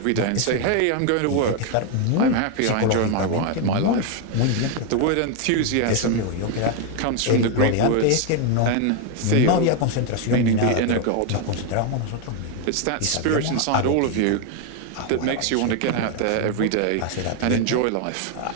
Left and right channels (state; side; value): different; both; correlation 0.01